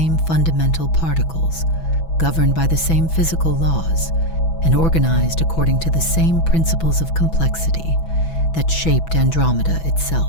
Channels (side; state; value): right; late; 6.0 ms